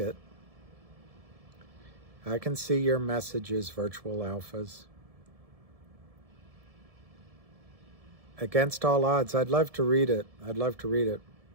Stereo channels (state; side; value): late; left; 1.7 ms